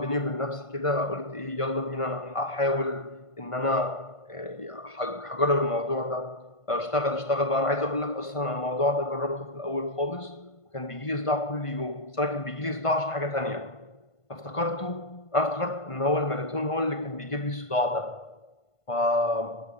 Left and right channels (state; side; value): late; right; 1.5 ms